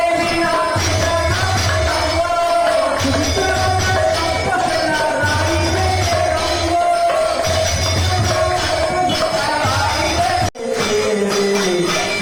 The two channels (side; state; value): both; identical; correlation 1.00